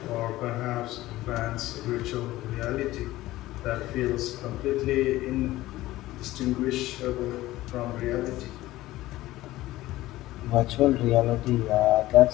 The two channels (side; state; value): right; quieter; 16.7 dB